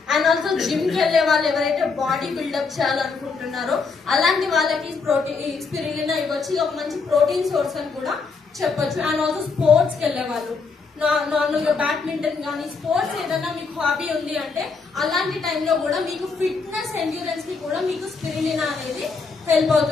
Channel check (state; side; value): quieter; right; 4.7 dB